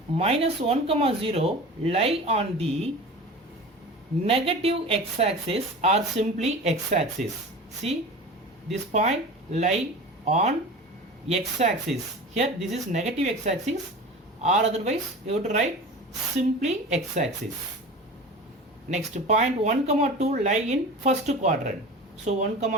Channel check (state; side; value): normal; both; correlation 0.35